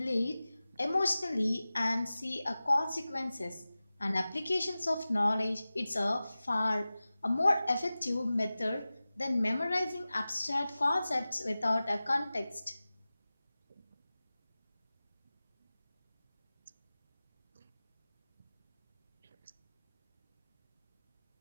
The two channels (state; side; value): inverted; both; correlation -0.97